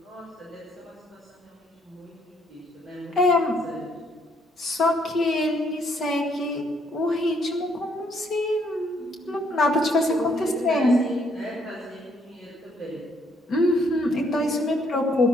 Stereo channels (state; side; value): normal; both; correlation 0.69